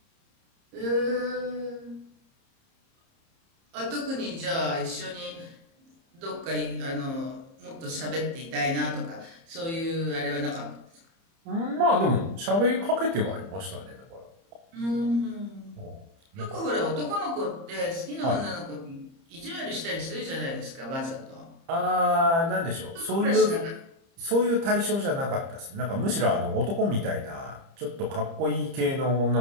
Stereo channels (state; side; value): late; left; 30 ms